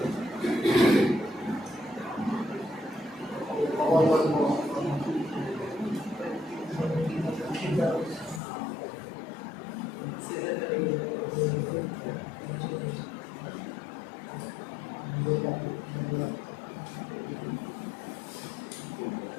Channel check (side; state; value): right; drops out; at 8.4 s